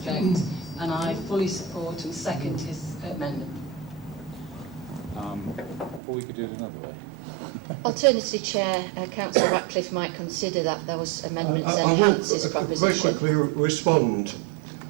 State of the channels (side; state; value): left; drops out; at 6.0 s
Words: and I fully support and second his amendment. Or we could do it another way. Alternatively, Chair, Councillor Ratcliffe might consider that those amendments I enhance will his proposition. very quickly respond.